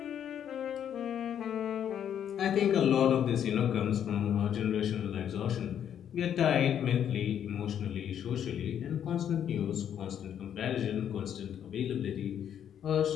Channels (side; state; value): right; quieter; 9.3 dB